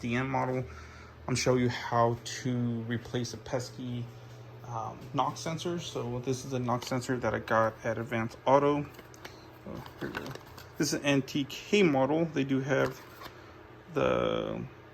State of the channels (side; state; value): both; identical; correlation 1.00